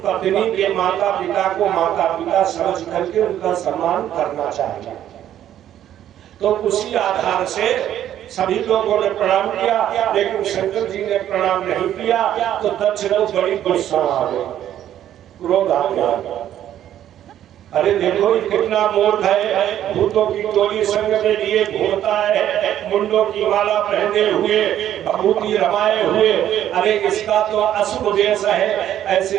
पत्नी के माता पिता को माता पिता समझ करके उनका सम्मान करना चाहिए। तो उसी आधार से सभी लोगों ने प्रणाम किया, लेकिन शंकर जी ने प्रणाम नहीं किया तो दक्ष को बड़ी गुस्सा आ गई, क्रोध आ गया। अरे देखो ये कितना मूर्ख है, भूतों की टोली संग में लिए घूमता है, मुंडों की माला पहने हुए, भभूति रमाए हुए, अरे इसका तो अशुभ देश है, ऐसे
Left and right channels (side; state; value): left; quieter; 11.3 dB